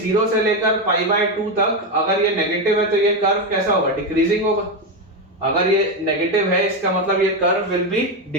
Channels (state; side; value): normal; both; correlation 0.11